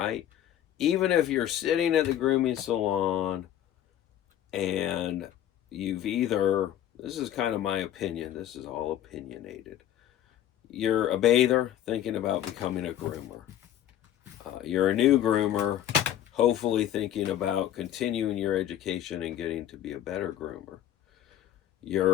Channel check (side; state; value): right; quieter; 11.5 dB